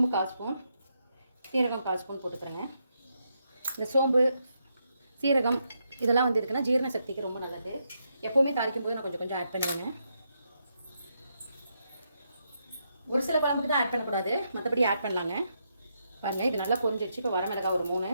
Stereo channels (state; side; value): inverted; both; correlation -0.81